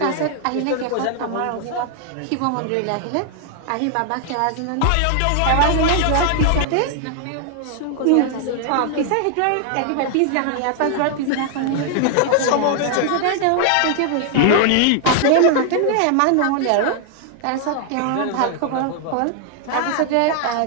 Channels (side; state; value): both; different; correlation 0.00